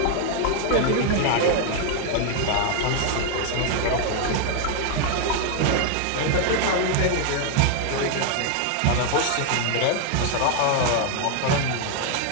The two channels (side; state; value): both; different; correlation 0.00